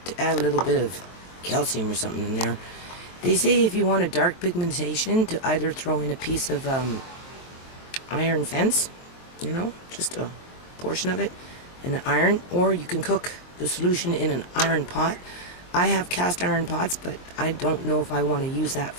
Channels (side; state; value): right; late; 23 ms